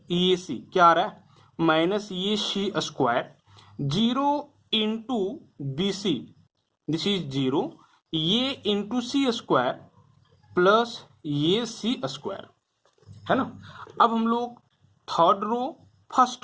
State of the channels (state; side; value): identical; both; correlation 1.00